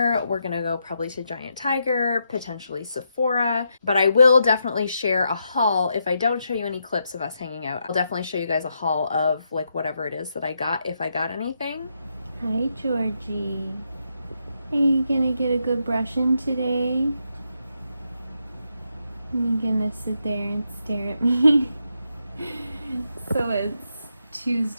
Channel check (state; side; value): inverted; both; correlation -0.82